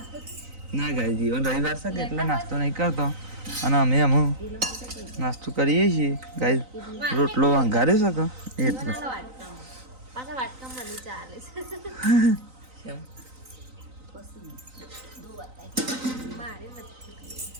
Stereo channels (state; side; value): late; left; 3.9 ms